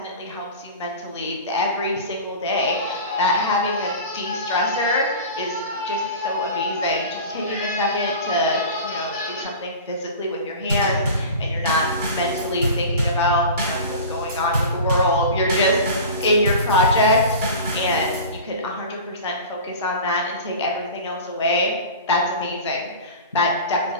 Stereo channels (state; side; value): inverted; both; correlation -0.35